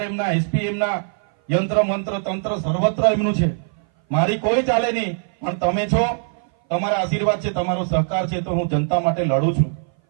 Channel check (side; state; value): left; silent; 59 dB below the other